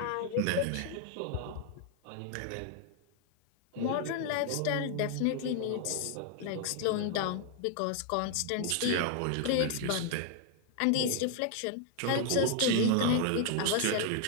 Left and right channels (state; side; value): different; both; correlation 0.00